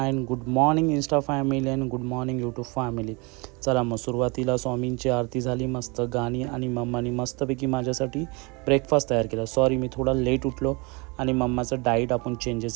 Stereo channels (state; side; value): quieter; left; 28.7 dB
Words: and good morning Insta family and good morning YouTube family. चला मग सुरुवातीला स्वामींची आरती झाली, मस्त गाणी आणि मम्मानी मस्तपैकी माझ्यासाठी ब्रेकफास्ट तयार केला. सॉरी मी थोडा लेट उठलो आणि मम्माचं डाईट आपण